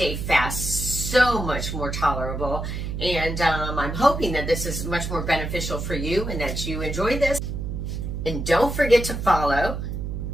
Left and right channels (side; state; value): right; noise; hum, 4 dB below the sound